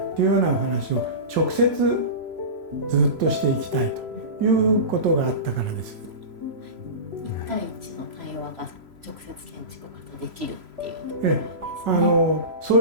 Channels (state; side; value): late; left; 3.0 ms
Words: っていうようなお話を直接ずっとしていきたいということがあったからです。1対1の対話が直接建築家とできるっていうところですね。そ